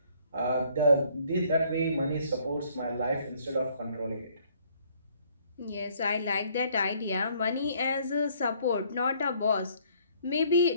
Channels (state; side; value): inverted; both; correlation -0.62